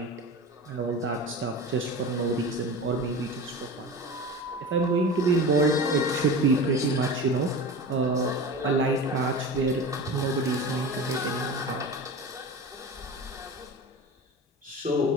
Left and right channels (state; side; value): normal; both; correlation 0.31